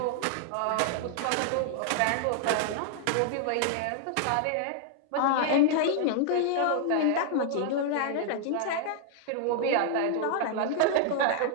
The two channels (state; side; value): different; both; correlation -0.01